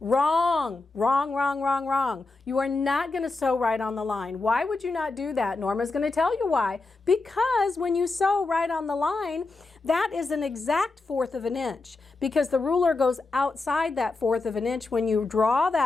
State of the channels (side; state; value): right; quieter; 3.5 dB